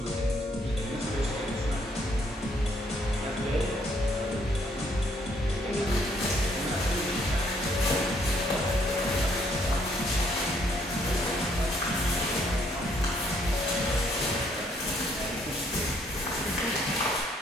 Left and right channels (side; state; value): both; normal; correlation 0.68